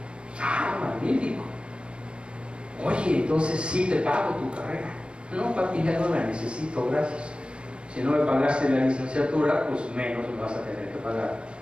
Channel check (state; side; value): late; left; 0.057 ms